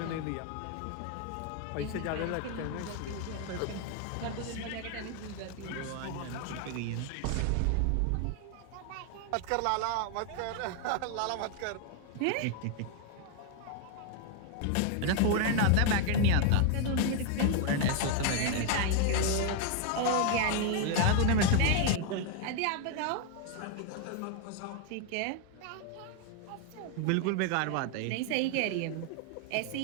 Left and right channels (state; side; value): different; both; correlation 0.00